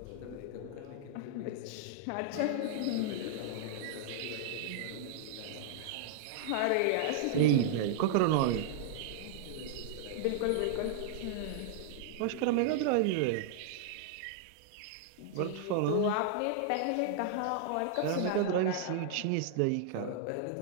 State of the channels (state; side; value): different; both; correlation -0.01